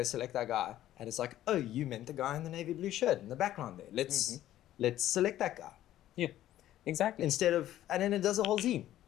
select that guy. And it's like, oh, you meant the guy in the navy blue shirt in the background there. Let's select that guy. Yeah, exactly. Instead of, and then it does a whole scene.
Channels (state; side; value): quieter; right; 13.1 dB